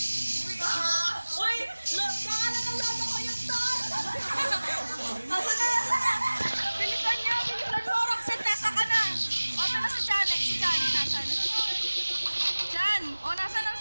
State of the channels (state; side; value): inverted; both; correlation -1.00